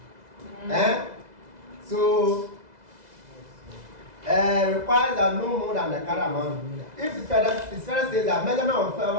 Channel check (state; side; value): late; left; 2.0 ms